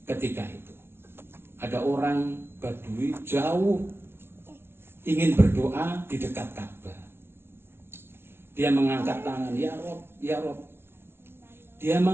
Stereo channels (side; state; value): left; late; 0.12 ms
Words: ketika itu ada orang Badui jauh ingin berdoa di dekat Ka'bah. Dia mengangkat tangan, ya Rob, ya Rob. Dia